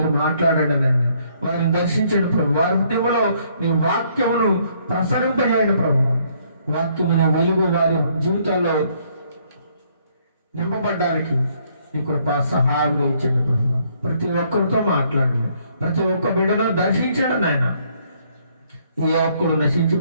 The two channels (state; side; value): inverted; both; correlation -0.67